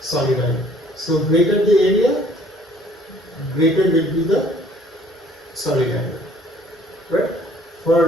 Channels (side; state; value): both; normal; correlation 0.58